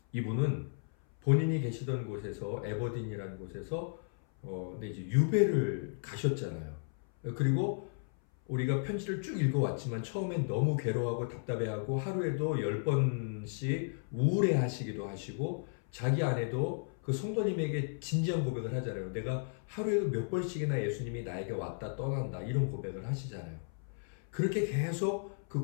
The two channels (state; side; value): silent; right; 55 dB below the other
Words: 이분은 본인이 계시던 곳에서 에버딘이라는 곳에서 이제 유배를 가셨잖아요. 그리고 우리가 편지를 쭉 읽어왔지만 처음엔 너무 괴로워하고 답답해하고 하루에도 10번씩 우울해하시기도 하시고 자기 아내도 그 성도님에게 진지한 고백을 하잖아요. 내가 하루에도 몇 번씩이나 예수님이 나에게 왔다 떠난다 이런 고백을 하시잖아요. 그렇게 계속